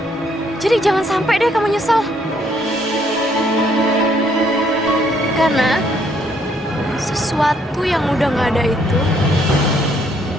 Jadi jangan sampai deh kamu nyesel. Karena sesuatu yang udah gak ada itu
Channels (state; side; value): normal; both; correlation 0.68